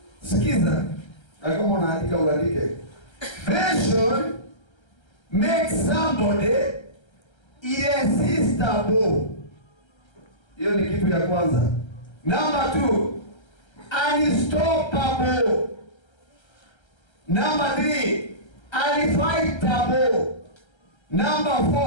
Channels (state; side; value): late; right; 1.3 ms